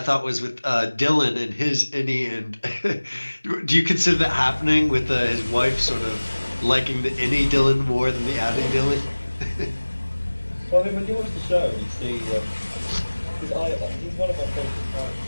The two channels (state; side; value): inverted; both; correlation -1.00